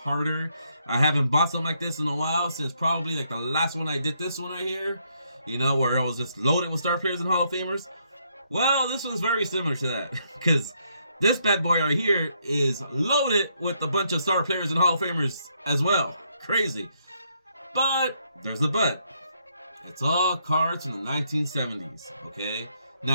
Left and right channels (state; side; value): inverted; both; correlation -0.74